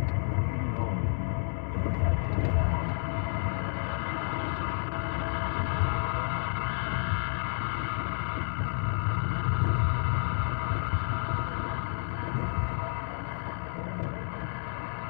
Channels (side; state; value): right; silent; 58 dB below the other